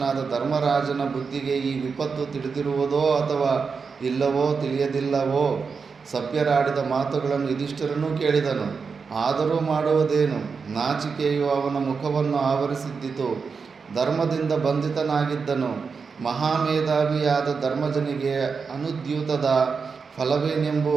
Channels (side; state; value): left; quieter; 5.3 dB